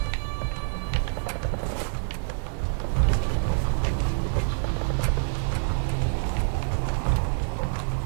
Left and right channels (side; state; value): left; silent; digital silence